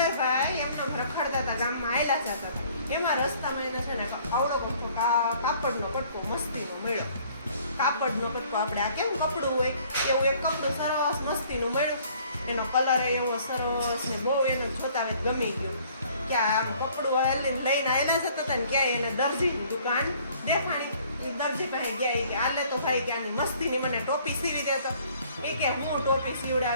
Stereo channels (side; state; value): both; inverted; correlation -0.58